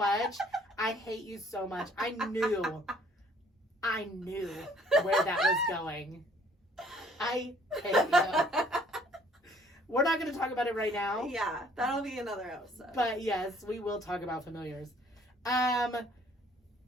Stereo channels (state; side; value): normal; both; correlation 0.59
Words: I hate you so much. I knew where that was going. I hate you. We're not going to talk about it right now. Yeah, that'll be another episode. But yes, we will talk about familiars.